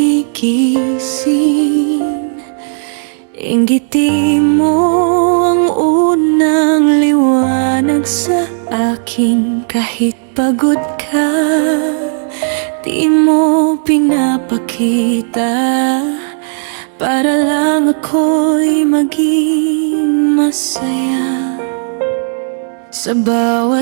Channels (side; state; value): left; silent; digital silence